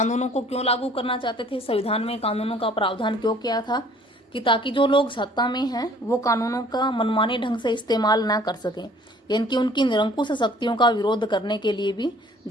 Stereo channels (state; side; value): normal; both; correlation 0.55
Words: को क्यों लागू करना चाहते थे, संविधान में कानूनों का प्रावधान क्यों किया था, कि ताकि जो लोग सत्ता में हैं वो कानूनों का मनमाने ढंग से इस्तेमाल ना कर सकें, यानी कि उनकी निरंकुश शक्तियों का विरोध करने के लिए भी